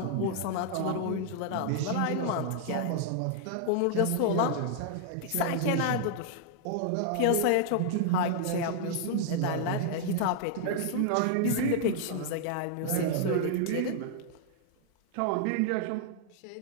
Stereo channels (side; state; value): both; different; correlation -0.01